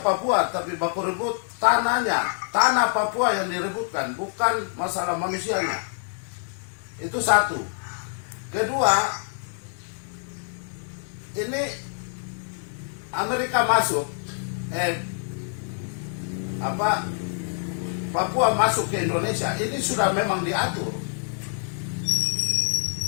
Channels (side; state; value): right; silent; 61 dB below the other